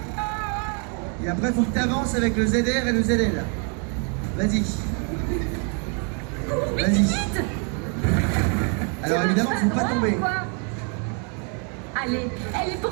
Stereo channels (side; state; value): left; quieter; 38.2 dB